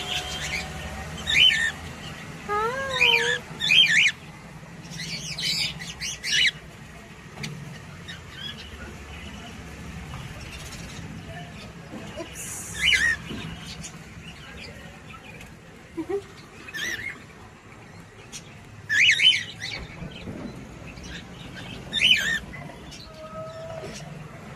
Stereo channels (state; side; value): identical; both; correlation 1.00